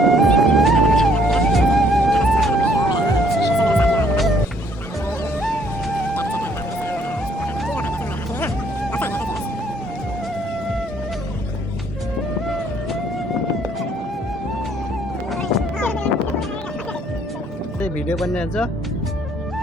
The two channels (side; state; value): both; normal; correlation 0.64